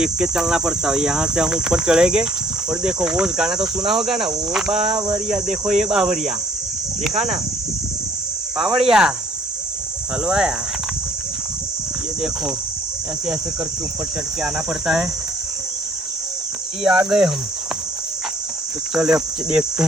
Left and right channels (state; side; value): normal; both; correlation 0.59